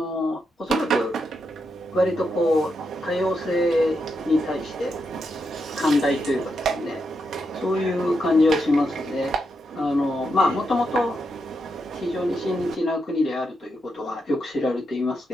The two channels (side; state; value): both; normal; correlation 0.83